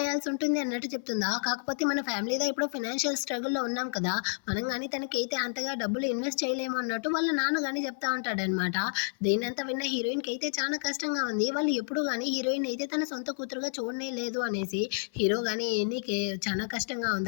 ఉంటుంది అన్నట్టు చెప్తుందా. కాకపోతే మన ఫ్యామిలీలో ఇప్పుడు ఫైనాన్షియల్ స్ట్రగుల్లో ఉన్నాం కదా, మనం కానీ తనకైతే అంతగా డబ్బులు ఇన్వెస్ట్ చేయలేము అన్నట్టు వాళ్ళ నాన్న కానీ చెప్తా ఉంటాడనమాట. దీనంతా విన్న హీరోయిన్కి అయితే చాలా కష్టంగా ఉంది, వాళ్ళు ఎప్పుడు కానీ హీరోయిన్ అయితే తన సొంత కూతురుగా చూడనే లేదు అనేసి. హీరో కానీ నీకు చాలా కష్టంగా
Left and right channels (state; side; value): silent; right; 57 dB below the other